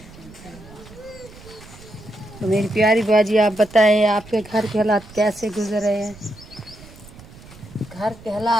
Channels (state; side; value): noise; right; rumble, 20 dB below the sound